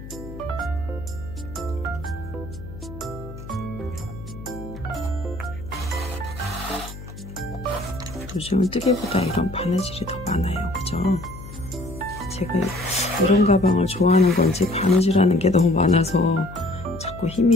요즘은 뜨개보다 이런 바느질이 더 많아요. 그죠? 제가 이런 가방을 좋아하는 건지 바느질하는 게 너무 많아서 자꾸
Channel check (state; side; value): noise; left; hum, 13 dB below the sound